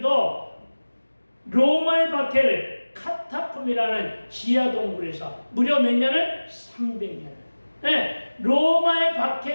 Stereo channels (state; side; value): inverted; both; correlation -1.00